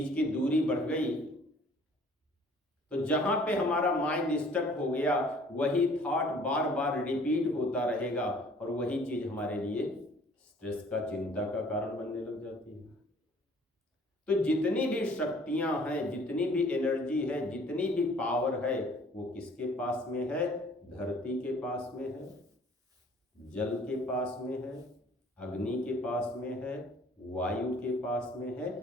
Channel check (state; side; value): normal; both; correlation 0.55